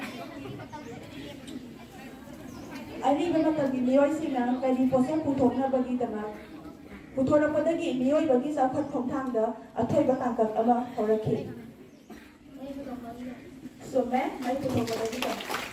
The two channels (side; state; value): both; identical; correlation 1.00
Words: Ani ba matagi miyoy sila kani posong putok na bagi tama. Putok na padagi miyoy bagi sa khat khong thang da athoy ba tangkak ama horaki. So may putok ba bagi tama.